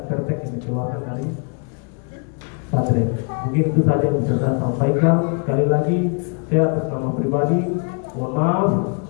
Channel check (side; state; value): right; quieter; 38.5 dB